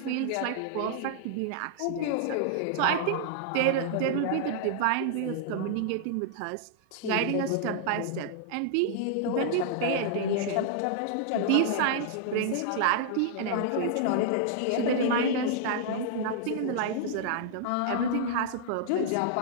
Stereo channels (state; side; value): different; both; correlation -0.01